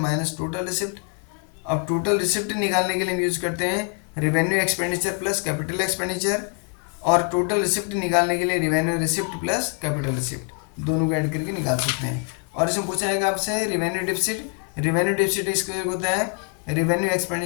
total receipt. अब टोटल रिसिप्ट निकालने के लिए हम यूज करते हैं revenue expenditure plus capital expenditure, और टोटल रिसिप्ट निकालने के लिए revenue receipt plus capital receipt, दोनों को ऐड करके निकाल सकते हैं। और इसमें पूछा जाएगा आपसे रिवेन्यू डिफिसिट। रिवेन्यू डिफिसिट इसको होता है revenue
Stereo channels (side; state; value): right; quieter; 36.3 dB